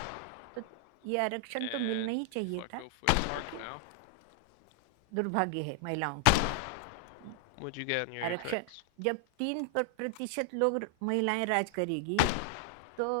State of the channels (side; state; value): both; different; correlation -0.01